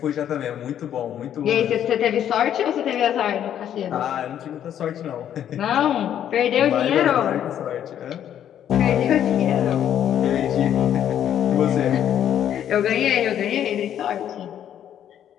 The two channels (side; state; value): right; quieter; 10.2 dB